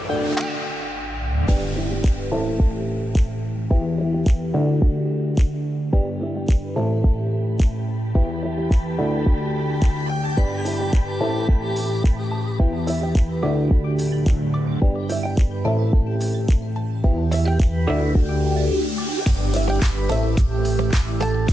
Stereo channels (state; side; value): normal; both; correlation 0.91